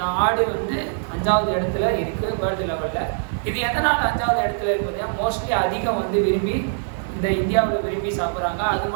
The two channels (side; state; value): left; silent; digital silence